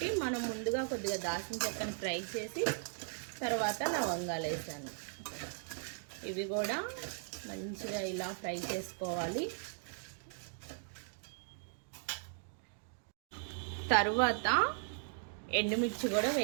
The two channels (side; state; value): left; silent; digital silence